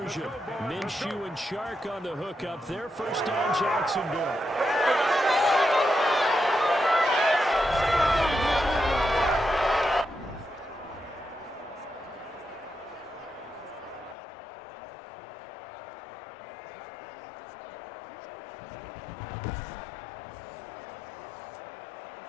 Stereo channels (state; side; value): drops out; right; at 14.2 s